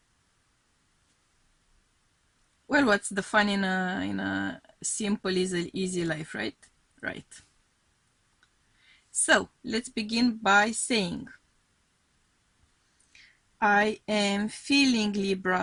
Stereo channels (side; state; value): both; identical; correlation 1.00